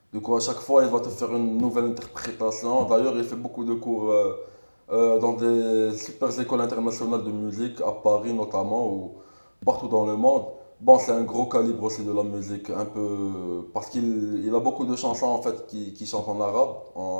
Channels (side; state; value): both; inverted; correlation -1.00